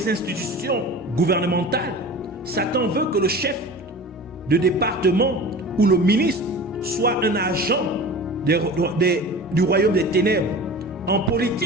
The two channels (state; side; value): normal; both; correlation 0.36